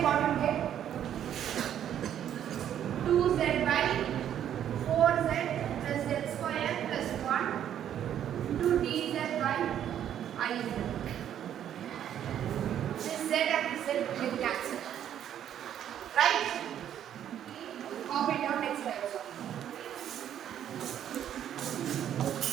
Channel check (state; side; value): quieter; left; 10.2 dB